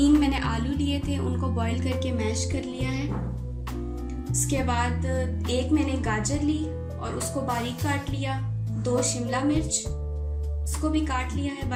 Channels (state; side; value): identical; both; correlation 1.00